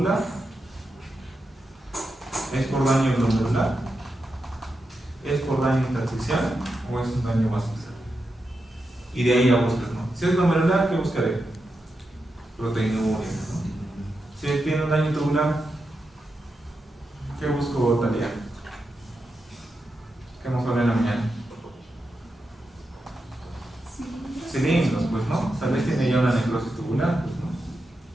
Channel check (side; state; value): both; normal; correlation 0.88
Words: ¿Es por daño glomerular? ¿Es por daño intersticial o es un daño vascular? Y de ahí ya buscas, ¿no? Si es glomerular, ¿qué buscaré? Proteinuria, ¿no? Si tiene un daño tubular, ¿qué busco, Talia? ¿Qué hemos hablado en la mañana? Cilindros, pues, ¿no? Tal vez tiene ya una necrosis tubular, pues, ¿no?